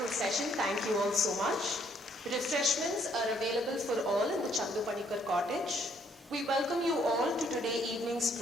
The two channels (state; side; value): normal; both; correlation 0.67